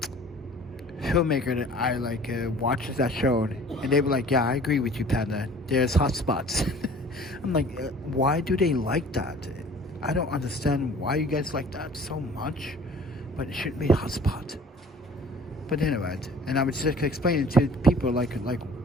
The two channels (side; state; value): both; normal; correlation 0.49